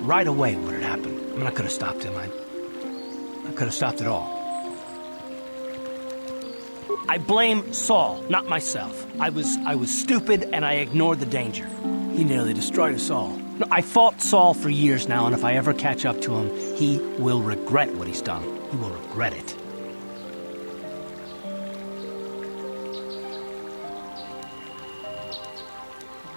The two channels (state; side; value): inverted; both; correlation -1.00